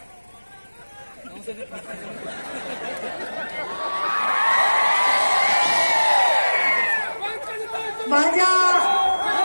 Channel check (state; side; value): inverted; both; correlation -1.00